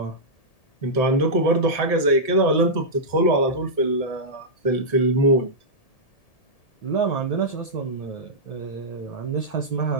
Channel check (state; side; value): late; right; 1.7 ms